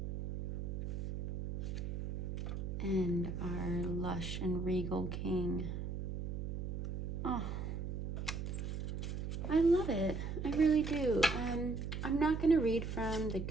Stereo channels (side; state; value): right; noise; hum, 4 dB below the sound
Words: And our lush and regal King. Oh, I love it. I really do. I'm not going to read from the